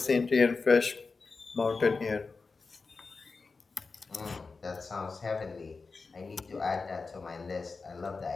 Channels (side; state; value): right; quieter; 4.3 dB